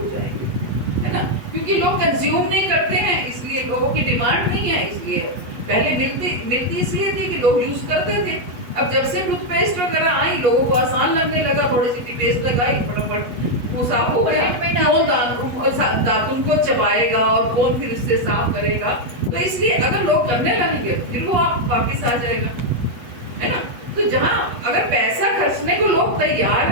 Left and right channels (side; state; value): left; late; 8.1 ms